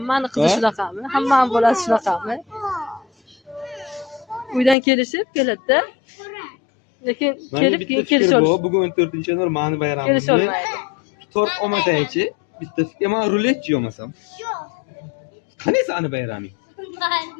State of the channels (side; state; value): right; drops out; at 4.8 s